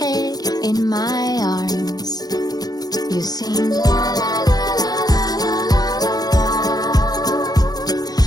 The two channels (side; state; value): right; late; 0.19 ms